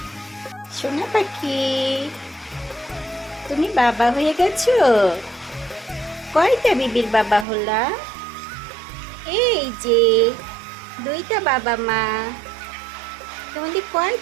সোনা পাখি, তুমি বাবা হয়ে গেছো? কয়টা বিবির বাবা হলা? এই যে দুইটা বাবা মা। তোমাদের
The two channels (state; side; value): drops out; left; at 7.5 s